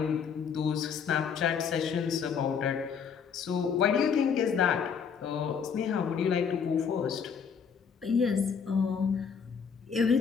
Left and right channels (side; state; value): right; quieter; 6.6 dB